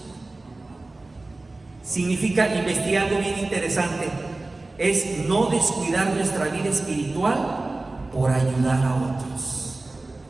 Significa investigar algo bien interesante. Es no descuidar nuestra vida espiritual por ayudar a otros.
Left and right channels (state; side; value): quieter; left; 3.1 dB